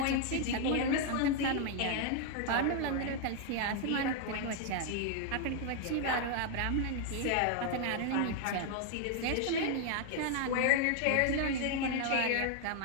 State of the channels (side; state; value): both; different; correlation 0.00